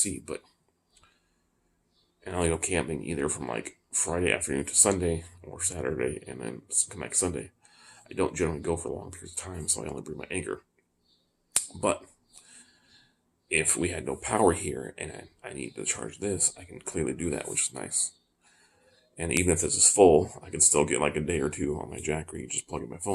But and I only go camping either from like Friday afternoon to Sunday or Saturday and then come back Sunday. I don't generally go for long periods of time, so I only bring my Anchor. But if we had no power here and I need to charge this, I can clearly do that, which is nice. And even if this is full, I can still get like a day or 2 on my jackery, just plug in my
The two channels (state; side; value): identical; both; correlation 1.00